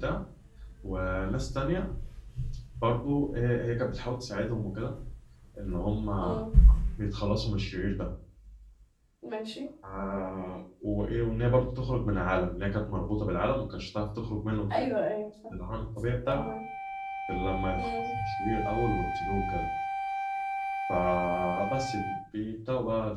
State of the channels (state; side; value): identical; both; correlation 1.00